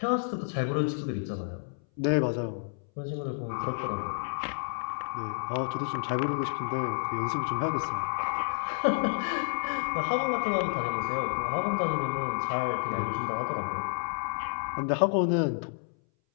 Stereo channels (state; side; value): silent; right; 58 dB below the other